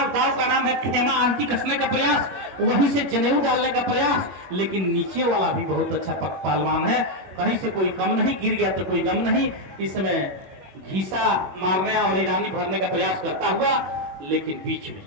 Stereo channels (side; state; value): left; late; 22 ms